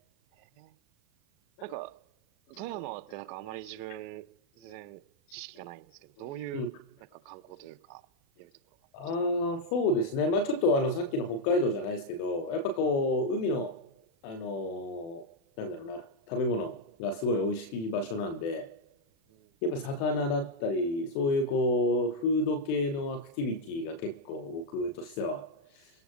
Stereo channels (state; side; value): late; right; 36 ms